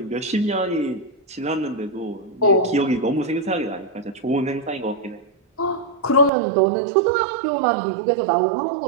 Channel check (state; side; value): drops out; left; at 6.3 s